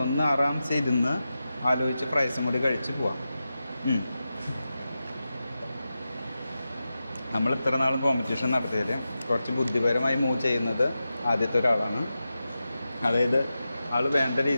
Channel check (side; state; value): both; inverted; correlation -0.92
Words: ഒന്ന് ആറാംസെ ഇരുന്ന് ആലോചിച്ച് ഫ്രൈസും കൂടി കഴിച്ച് പോവാം. നമ്മൾ ഇത്ര നാൾ കോമ്പറ്റീഷൻ നടത്തിയതിൽ കുറച്ച് ബുദ്ധിപരമായി മൂവ് ചെയ്യുന്നത് ആദ്യത്തെ ഒരാളാണ്. അതായത് ആൾ വേണ്ട